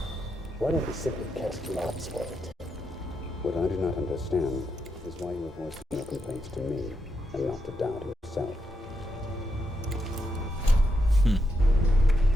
why don't we simply cast lots for it? What I do not understand is why you are voicing your complaints to me. and not to doubt himself.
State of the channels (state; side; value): normal; both; correlation 0.82